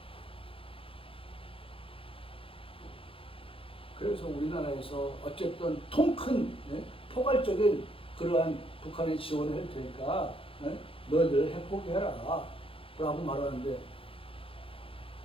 그래서 우리나라에서 어쨌든 통큰 포괄적인 그러한 북한의 지원을 할 테니까 너희들 핵 포기해라 라고 말하는데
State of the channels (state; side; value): late; right; 0.27 ms